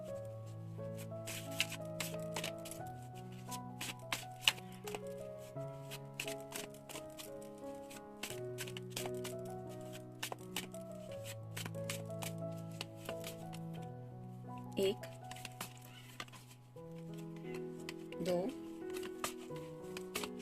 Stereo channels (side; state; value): both; identical; correlation 1.00